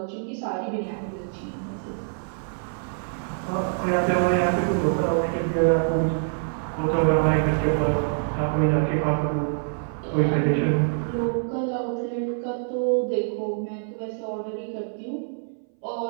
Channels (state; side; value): silent; left; 60 dB below the other